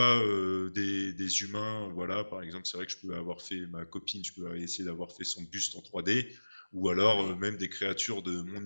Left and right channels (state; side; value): inverted; both; correlation -1.00